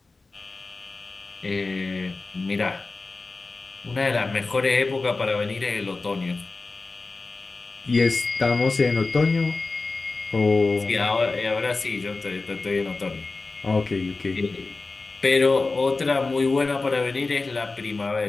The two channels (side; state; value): right; quieter; 3.7 dB